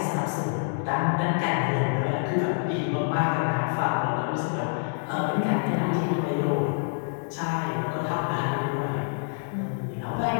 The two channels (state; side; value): silent; right; digital silence